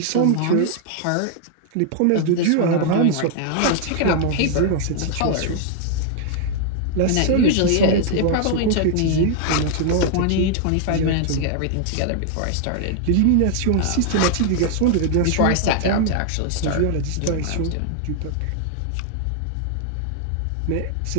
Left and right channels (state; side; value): different; both; correlation 0.00